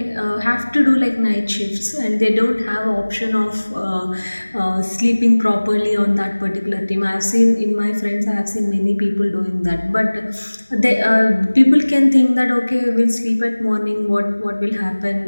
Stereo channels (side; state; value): both; inverted; correlation -1.00